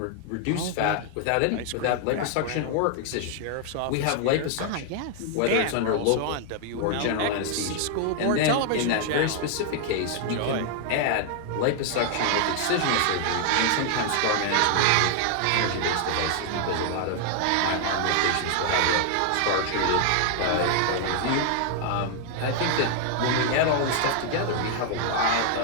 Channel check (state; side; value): different; both; correlation 0.00